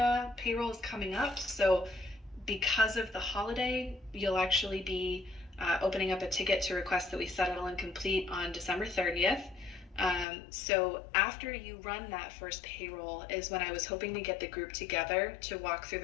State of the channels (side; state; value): right; drops out; at 10.2 s